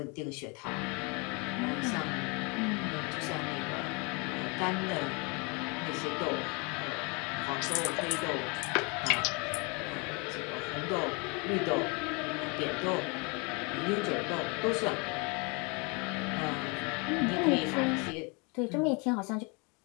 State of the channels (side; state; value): right; quieter; 31.0 dB